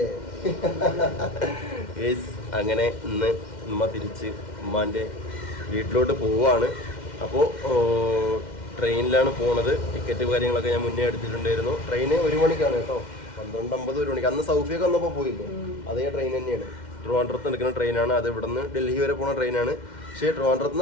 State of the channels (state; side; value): late; right; 2.1 ms